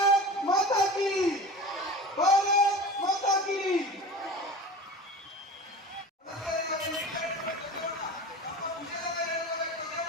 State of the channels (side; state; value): both; normal; correlation 0.35